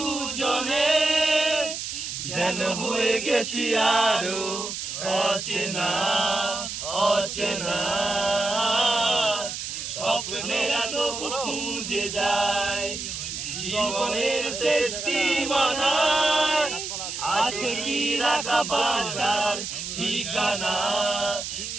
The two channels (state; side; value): noise; right; hiss, 6 dB below the sound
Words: যেন হয়ে গেছি আরো অচেনা অচেনা। স্বপ্নেরা তবু খুঁজে যায় জীবনের শেষ সীমানায়। আছে কি রাখা বাঁচার ঠিকানা